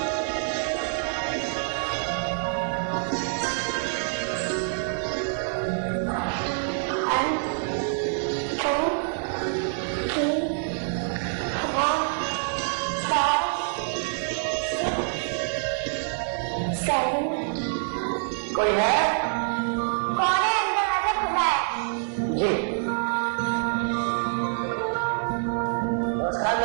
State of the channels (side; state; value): left; silent; 61 dB below the other